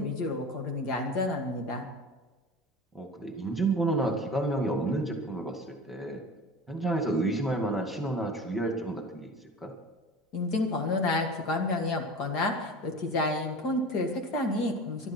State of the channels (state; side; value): normal; both; correlation 0.35